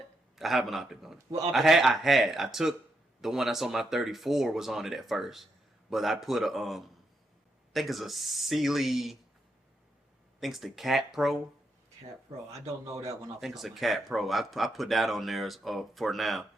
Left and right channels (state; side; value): normal; both; correlation 0.81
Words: I have an optic on it. Well, I took the one that's on my 34 was on it at first, but I put a I think it's a Sealy. I think it's the Cat Pro. Cat Pro. I don't know that one. I think it's a Cat Pro. I put that on there for now,